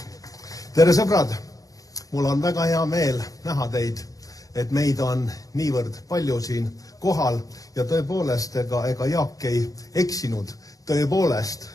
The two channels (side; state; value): right; late; 0.17 ms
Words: Tere sõbrad! Mul on väga hea meel näha teid, et meid on niivõrd palju siin kohal ja tõepoolest ega Jaak ei eksinud. Tõepoolest